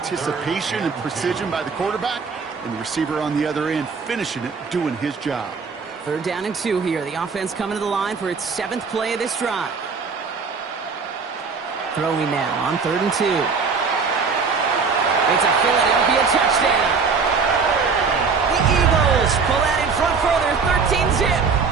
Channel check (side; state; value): left; quieter; 5.2 dB